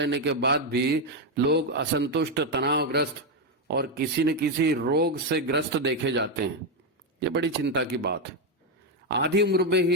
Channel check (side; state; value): both; normal; correlation 0.05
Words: के बाद भी लोग असंतुष्ट, तनावग्रस्त और किसी न किसी रोग से ग्रस्त देखे जाते हैं। ये बड़ी चिंता की बात है। आधी उम्र में